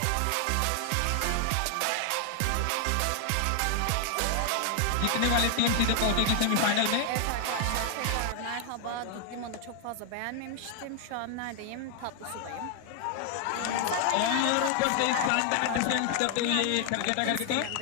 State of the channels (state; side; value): different; both; correlation 0.00